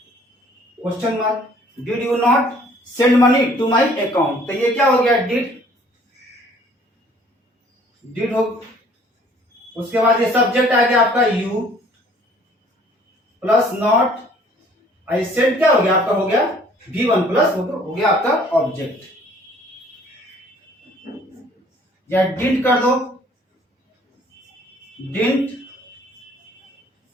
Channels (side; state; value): both; normal; correlation 0.56